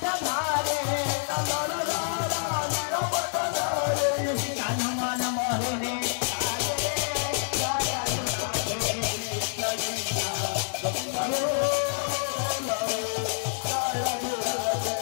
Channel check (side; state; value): right; silent; 60 dB below the other